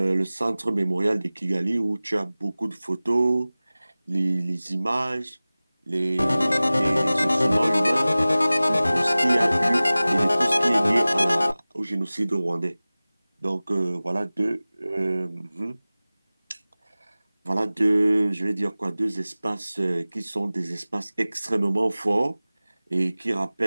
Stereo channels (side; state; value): both; inverted; correlation -0.98